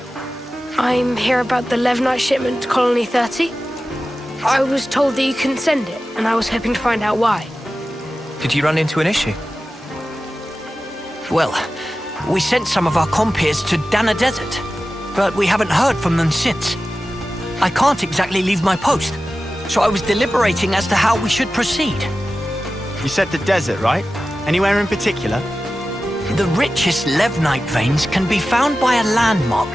I'm here about the Levnite shipment to Colony 30. I was told that you couldn't send it, and I was hoping to find out why. Did you run into an issue? Well, we sent some of our compeers to Dana Desert, but we haven't heard from them since. I can't exactly leave my post, so I was deliberating as to how we should proceed. You said the desert, right? Anywhere in particular? The richest Levnite veins can be found by a landmark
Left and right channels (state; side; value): normal; both; correlation 0.94